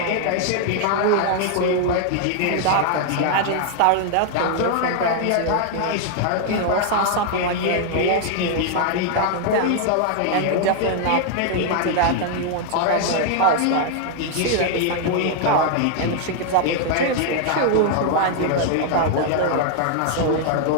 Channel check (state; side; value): different; both; correlation 0.00